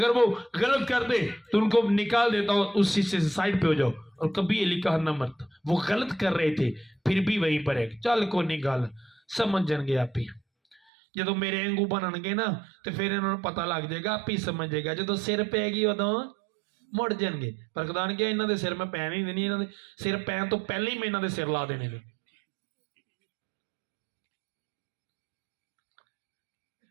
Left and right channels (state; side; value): drops out; left; at 10.8 s